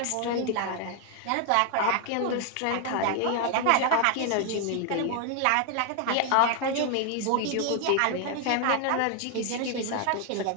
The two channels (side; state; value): both; different; correlation 0.00